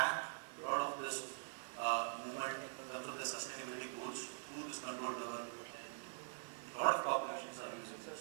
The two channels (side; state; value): left; silent; digital silence